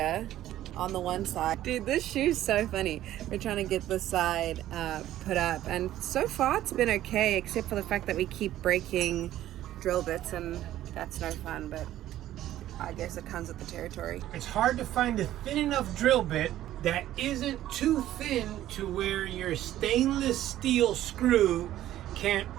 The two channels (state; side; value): quieter; left; 13.4 dB